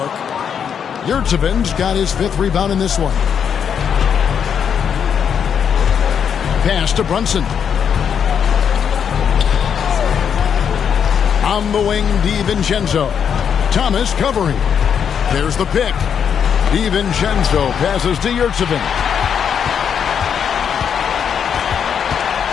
Yurtseven's got his 5th rebound in this one. Pass to Brunson. On the wing, DiVincenzo. Thomas covering. There's the pick. DiVincenzo passes to Yurtseven.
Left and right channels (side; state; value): right; quieter; 7.7 dB